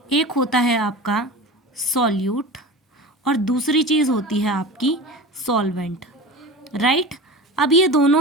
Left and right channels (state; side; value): normal; both; correlation 0.32